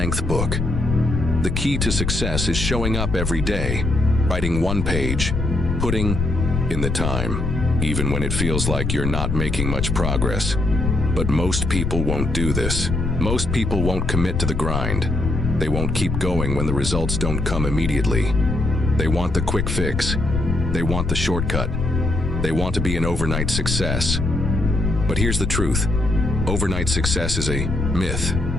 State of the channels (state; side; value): noise; left; rumble, 2 dB below the sound